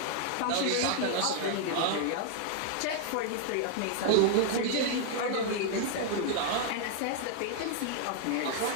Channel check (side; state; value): both; different; correlation 0.00